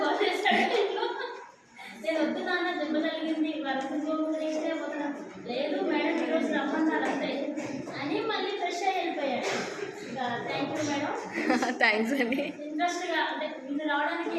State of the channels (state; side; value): identical; both; correlation 1.00